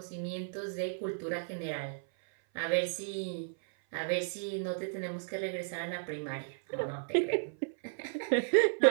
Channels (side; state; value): left; silent; 55 dB below the other